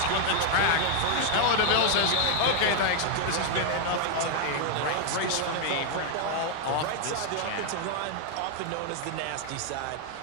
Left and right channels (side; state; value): both; different; correlation 0.00